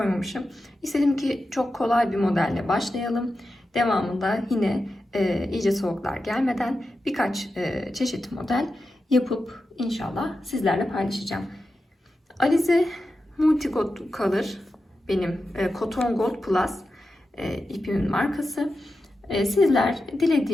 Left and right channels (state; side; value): normal; both; correlation 0.91